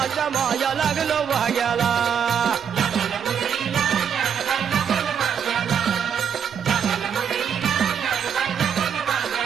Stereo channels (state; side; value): quieter; left; 7.7 dB